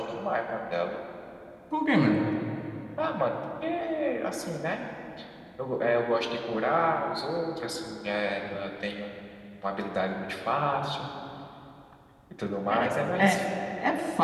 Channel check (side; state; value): both; identical; correlation 1.00